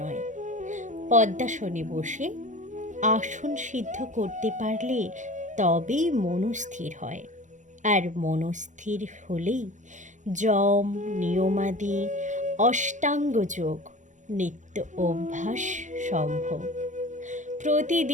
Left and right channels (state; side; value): late; left; 0.36 ms